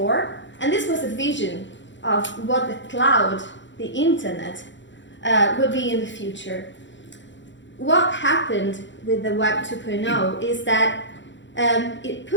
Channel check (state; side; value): late; right; 0.54 ms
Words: and this was a vision of what the cloud, the internet, will be in the future. What happened with the Web 2.0 is that it